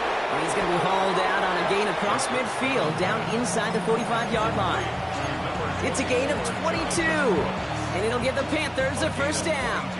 And he's going to be hauled out on a gain across midfield, down inside the 45-yard line. It's a gain of 22, and it'll give the Panthers a first down.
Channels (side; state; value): both; identical; correlation 1.00